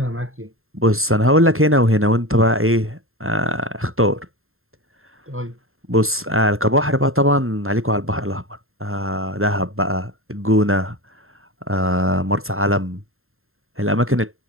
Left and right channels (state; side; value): late; left; 0.61 ms